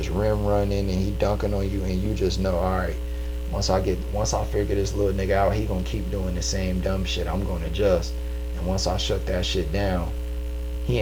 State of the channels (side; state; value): both; identical; correlation 1.00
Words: rim running and he dunking on you and you just know, all right, once I figure this little nigga out, he gonna keep doing the same dumb shit. I'm gonna adjust. And once I shut that shit down, he